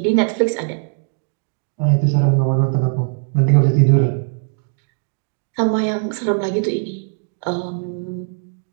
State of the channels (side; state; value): left; silent; 61 dB below the other